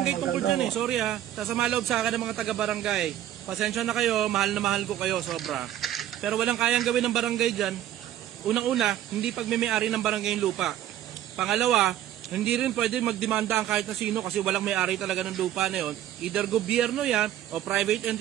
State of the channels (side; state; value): left; quieter; 12.3 dB